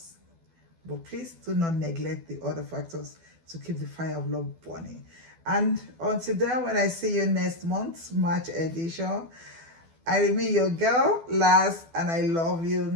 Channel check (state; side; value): late; left; 12 ms